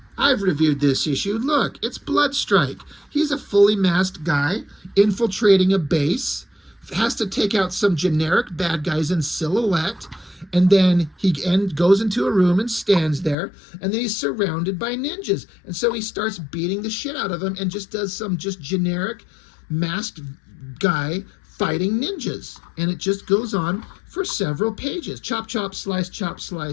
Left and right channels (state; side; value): drops out; right; at 13.4 s